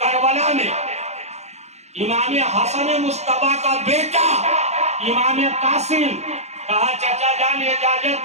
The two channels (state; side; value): late; left; 0.32 ms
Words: करबला में इमाम हसन मुस्तफा का बेटा इमाम कासिम कहा, चाचा जान इजाजत